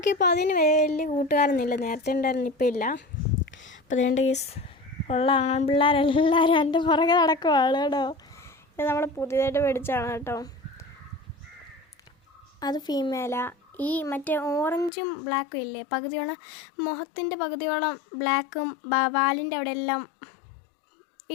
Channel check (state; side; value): drops out; right; at 14.9 s